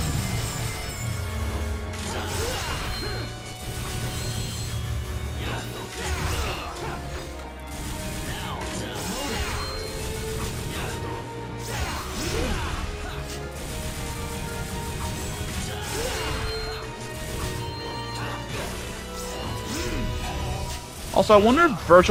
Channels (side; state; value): both; identical; correlation 1.00